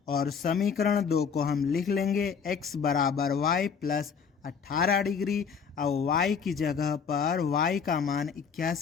और समीकरण 2 को हम लिख लेंगे x बराबर y प्लस 18 डिग्री। अब y की जगह पर y का मान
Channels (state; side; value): quieter; right; 6.4 dB